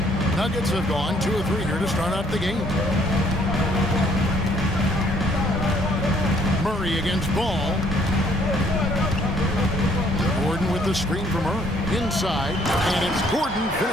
Nuggets have gone 2 or 3 here to start out the game. Murray against Ball. Gordon with the screen from her. Inside, and it's Gordon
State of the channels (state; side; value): normal; both; correlation 0.64